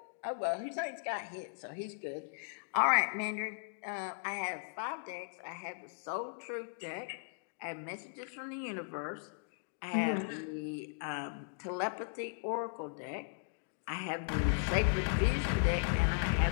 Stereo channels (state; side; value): silent; right; digital silence